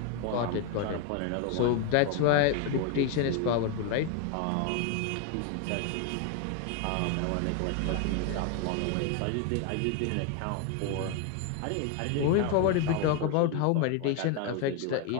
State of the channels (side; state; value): both; different; correlation 0.01